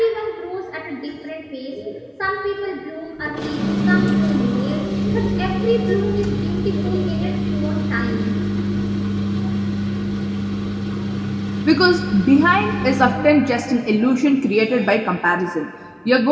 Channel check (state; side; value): identical; both; correlation 1.00